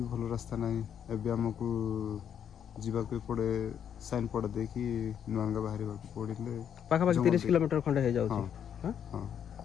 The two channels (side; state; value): right; quieter; 8.7 dB